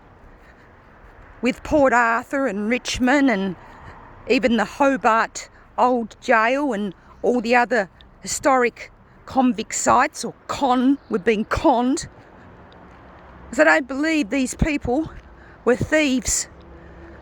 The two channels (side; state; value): both; identical; correlation 1.00